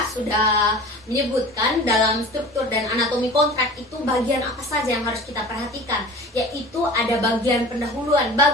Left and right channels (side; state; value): both; normal; correlation 0.39